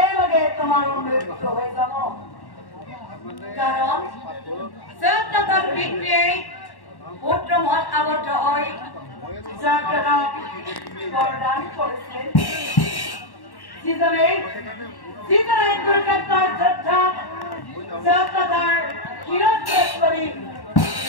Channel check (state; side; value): late; right; 1.1 ms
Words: লগে তোমাৰ মৃত্যু হৈ যাব কাৰণ পিতৃয়ে পুত্ৰ মত আবদ্ধ হৈ বৰদান কৰিছিল যিজনে কুৰুক্ষেত্ৰৰ যুদ্ধত শিৰচ্ছেদ কৰি